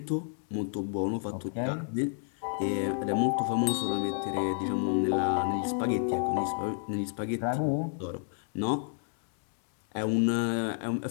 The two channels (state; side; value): silent; right; 57 dB below the other